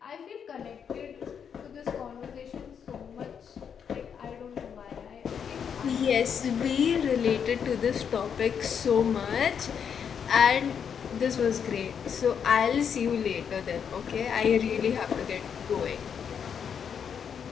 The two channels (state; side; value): quieter; right; 7.4 dB